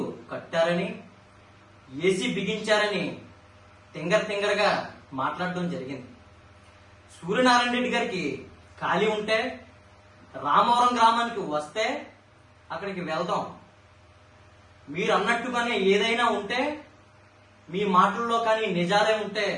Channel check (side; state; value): both; identical; correlation 1.00